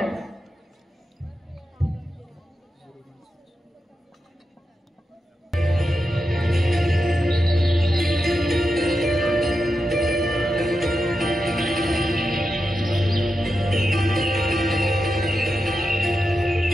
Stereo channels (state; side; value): normal; both; correlation 0.88